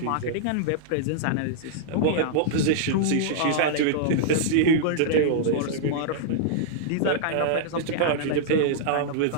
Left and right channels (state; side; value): different; both; correlation -0.02